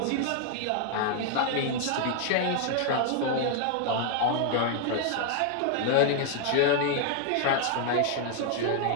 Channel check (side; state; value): both; different; correlation 0.00